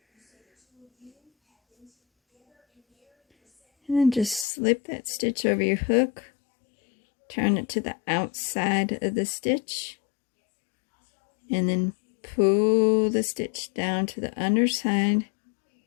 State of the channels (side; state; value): right; drops out; at 4.5 s